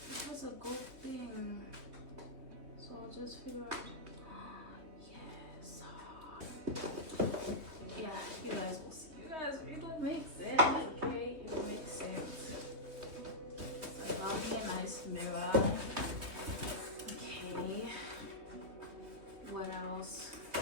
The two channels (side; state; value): left; late; 3.2 ms